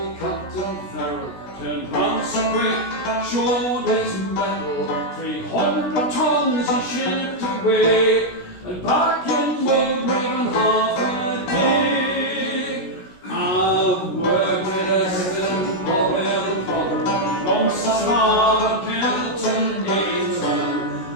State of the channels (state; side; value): late; right; 16 ms